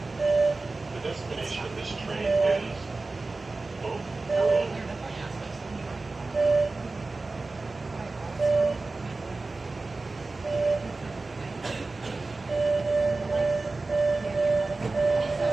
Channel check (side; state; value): left; quieter; 3.5 dB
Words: The destination of this train is Oak Grove.